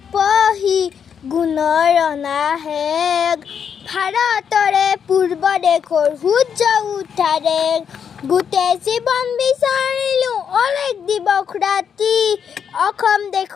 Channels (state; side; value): quieter; right; 7.5 dB